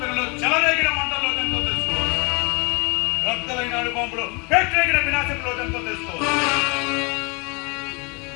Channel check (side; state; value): right; quieter; 31.1 dB